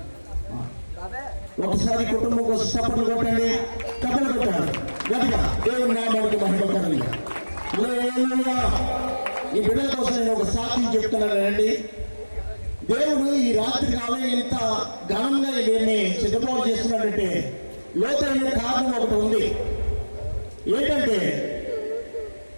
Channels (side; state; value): both; inverted; correlation -1.00